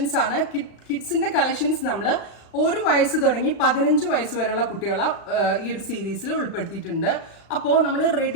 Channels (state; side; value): late; right; 35 ms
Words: ആണ്. കിഡ്സിന്റെ collections നമ്മൾ 1 വയസ്സ് തുടങ്ങി 15 വയസ്സ് വരെയുള്ള കുട്ടികളെ ഈ ഒരു സീരീസിൽ ഉൾപ്പെടുത്തിയിട്ടുണ്ട്. അപ്പോൾ നമ്മൾ